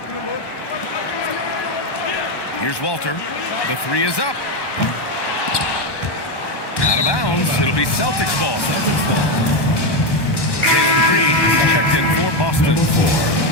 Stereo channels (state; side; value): late; right; 1.1 ms